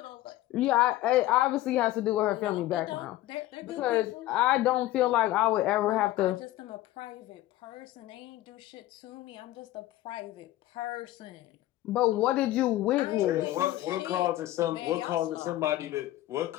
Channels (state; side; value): quieter; right; 15.6 dB